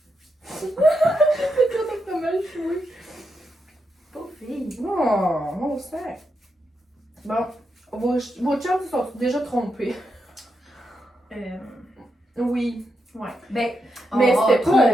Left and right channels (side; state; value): both; normal; correlation 0.84